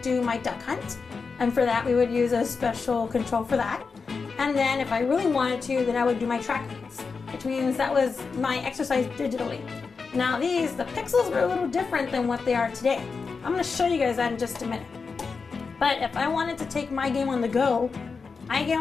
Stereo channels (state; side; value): quieter; right; 4.9 dB